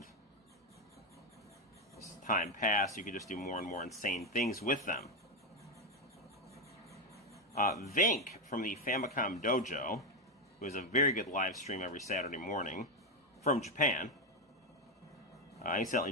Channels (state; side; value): normal; both; correlation 0.08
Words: as time passed, you could just do more and more insane things with them. Vink from the Famicom Dojo, who has a very good live stream every Saturday morning from Japan. I